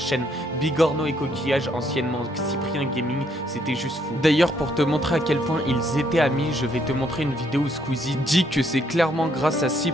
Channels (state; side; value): normal; both; correlation 0.70